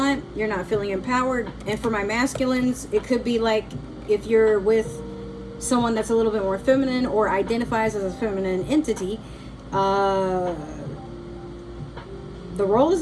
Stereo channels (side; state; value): both; identical; correlation 1.00